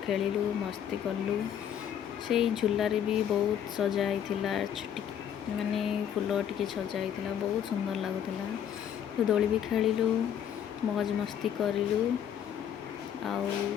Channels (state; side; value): quieter; right; 9.3 dB